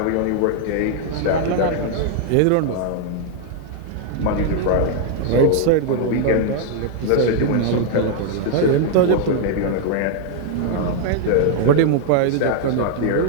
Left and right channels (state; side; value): different; both; correlation 0.00